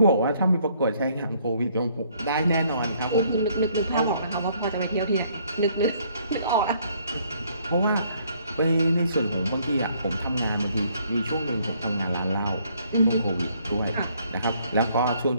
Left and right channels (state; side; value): inverted; both; correlation -0.65